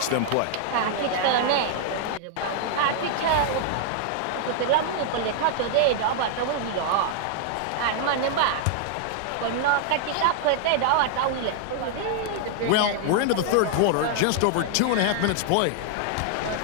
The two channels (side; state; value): both; different; correlation -0.01